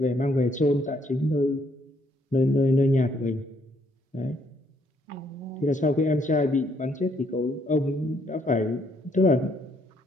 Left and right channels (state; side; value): normal; both; correlation 0.69